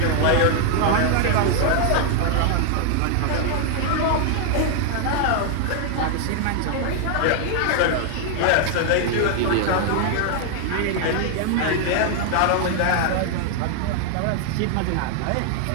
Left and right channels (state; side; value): different; both; correlation 0.00